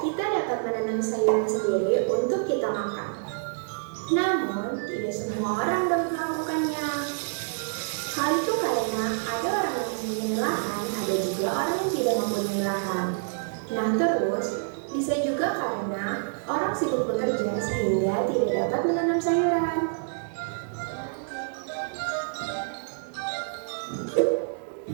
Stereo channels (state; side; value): silent; left; digital silence